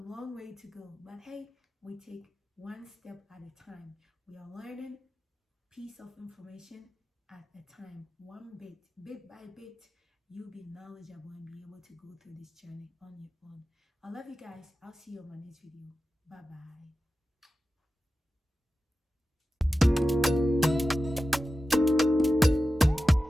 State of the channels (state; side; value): normal; both; correlation 0.93